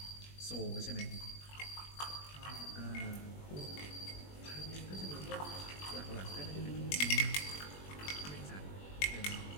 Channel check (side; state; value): right; late; 21 ms